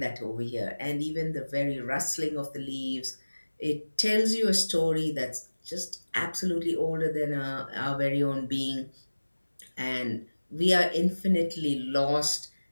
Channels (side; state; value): both; inverted; correlation -1.00